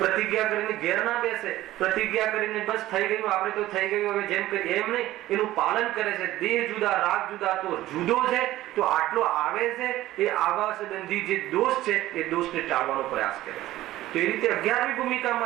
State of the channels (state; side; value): quieter; left; 15.4 dB